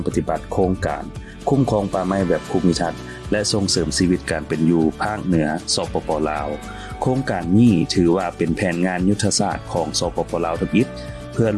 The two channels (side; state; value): both; identical; correlation 1.00